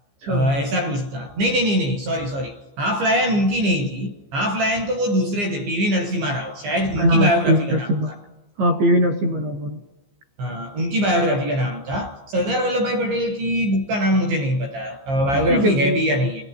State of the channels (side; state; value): left; late; 15 ms